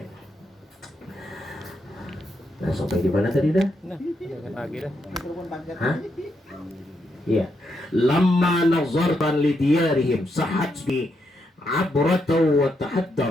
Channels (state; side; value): normal; both; correlation 0.80